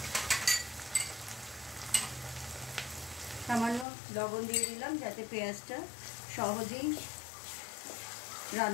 সামান্য লবণ দিয়ে দিলাম যাতে পেঁয়াজটা সহজেই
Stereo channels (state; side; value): drops out; right; at 3.9 s